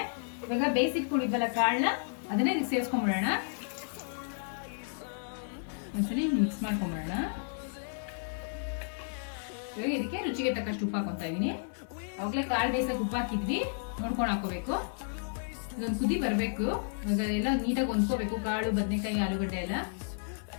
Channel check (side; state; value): right; silent; digital silence